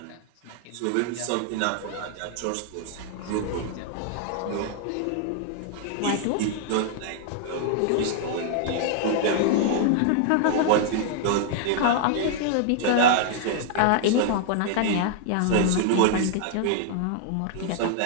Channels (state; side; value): different; both; correlation 0.00